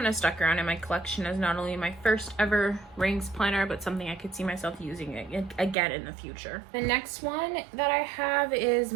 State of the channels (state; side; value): drops out; left; at 5.8 s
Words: of stuck around in my collection as not only my first ever rings planner, but something I could see myself using again in the future. The next one that I have is